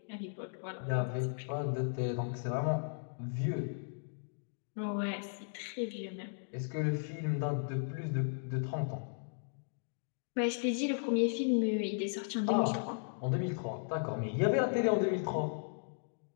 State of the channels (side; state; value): right; silent; digital silence